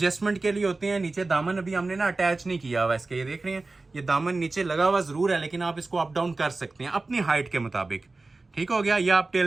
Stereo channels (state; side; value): quieter; left; 3.4 dB